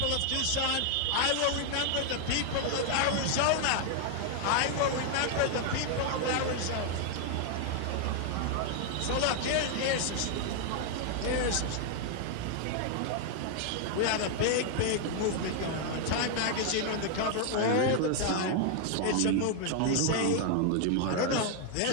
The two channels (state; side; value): different; both; correlation 0.00